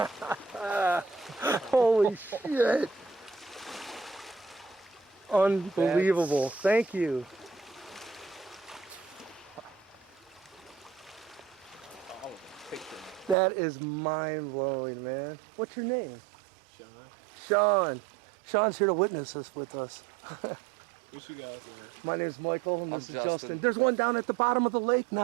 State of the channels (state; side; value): drops out; left; at 13.4 s